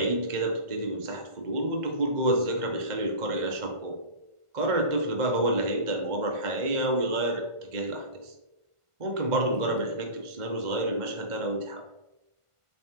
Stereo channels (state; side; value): late; left; 1.5 ms